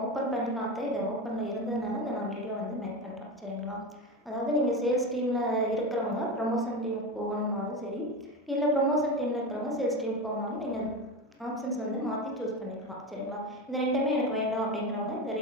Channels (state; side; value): normal; both; correlation 0.22